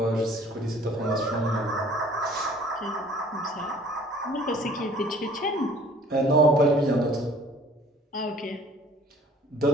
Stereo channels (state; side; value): normal; both; correlation 0.52